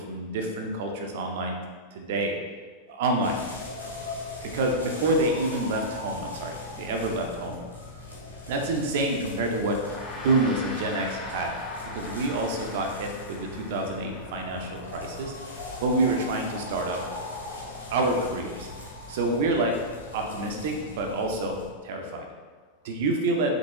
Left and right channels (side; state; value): both; normal; correlation -0.16